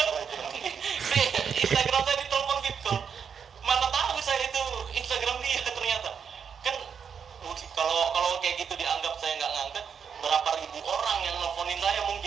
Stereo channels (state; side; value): quieter; left; 6.9 dB